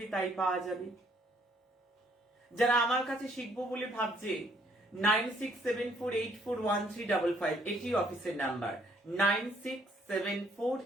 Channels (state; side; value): normal; both; correlation 0.66